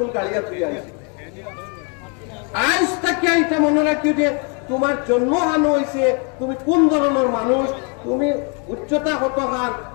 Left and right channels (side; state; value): right; quieter; 36.4 dB